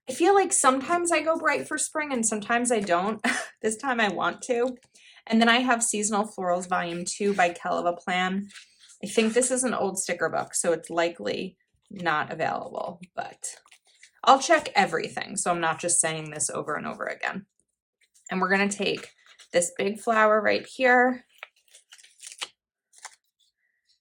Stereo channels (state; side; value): identical; both; correlation 1.00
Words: I feel like sometimes I go bright for spring and sometimes I don't. This time I want to. And then I have Seasonal Florals Volume 2 by Keleva Plan. I think this is an old sticker book, so it's likely not available, but I'll check everything. So I'm not just saying this over and over again. And we're going to take this big flower right here.